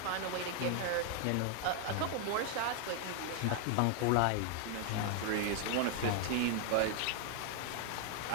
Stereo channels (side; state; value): both; different; correlation 0.00